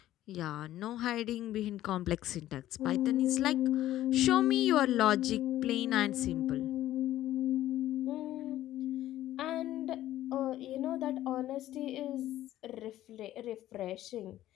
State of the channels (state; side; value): quieter; right; 13.7 dB